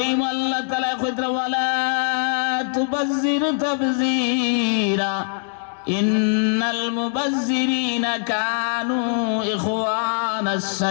আল্লাহ তাআলা কইরা ওয়ালা তুবাজ্জির তাবযীরা ইন্নাল মুবাজ্জিরিনা কানু ইখওয়ানাস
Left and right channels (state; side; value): silent; right; digital silence